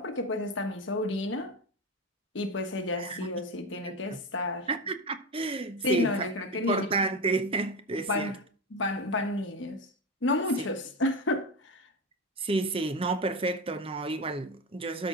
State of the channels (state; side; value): normal; both; correlation 0.19